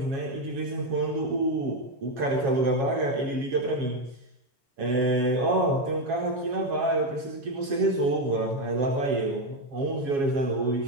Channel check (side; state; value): left; late; 7.3 ms